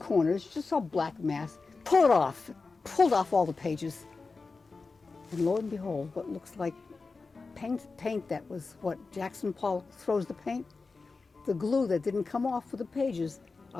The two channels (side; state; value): right; quieter; 4.1 dB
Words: corners. You just saw black mass. Pull it off. Pulled off all the pages. And lo and behold, what looks like paint that was what Jackson Pollock throws the paint. The glue that didn't come off for the pages